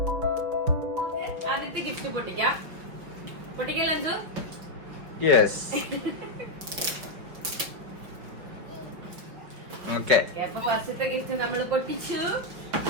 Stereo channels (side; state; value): left; late; 5.4 ms